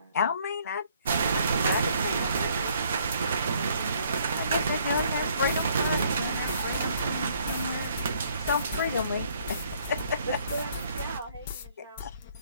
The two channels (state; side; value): inverted; both; correlation -0.63